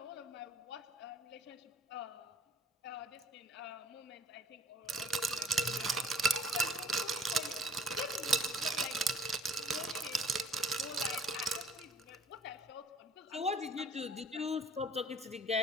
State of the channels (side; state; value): both; normal; correlation 0.55